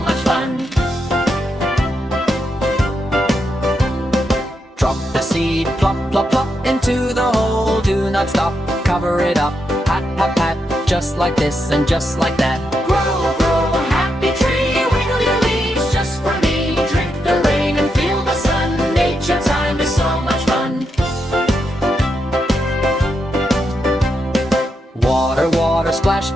much fun. Drop the seed, plop, plop, plop into the hole. Do not stop, cover it up, pat, pat, pat, just like this and just like that. Grow, grow a happy tree, wiggle your leaves just for me. Drink the rain and feel the sun, nature time is so much fun. Water, water, splash,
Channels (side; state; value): both; normal; correlation 0.83